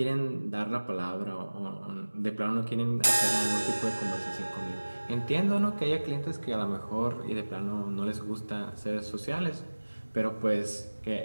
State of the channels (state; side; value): inverted; both; correlation -1.00